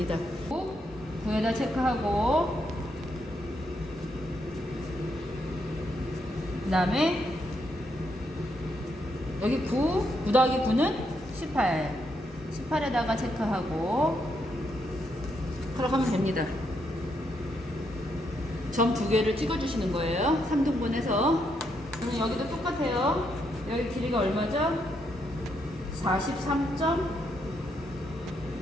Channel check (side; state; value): both; normal; correlation 0.78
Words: 9에다 체크하고 그 다음에 여기 9 더하기 9는 18 18에다가 체크하고 그렇게 하면 됩니다. 점 2개를 찍어주시는 거예요. 3등분해서 그러면 여기도 똑같아요. 여기 길이가 얼마죠?